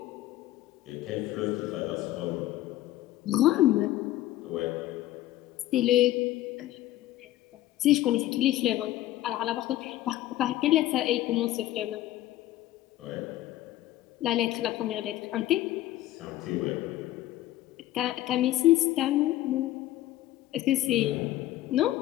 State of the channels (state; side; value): quieter; right; 14.9 dB